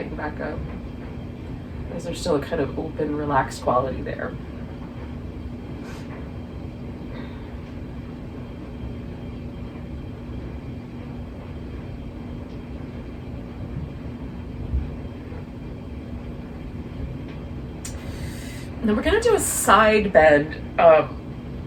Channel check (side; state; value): both; identical; correlation 1.00